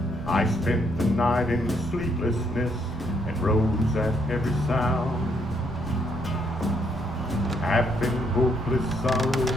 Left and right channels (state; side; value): noise; right; rumble, 10 dB below the sound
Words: I spent the night in sleeplessness and rose at every sound. Half in hopeless sorrow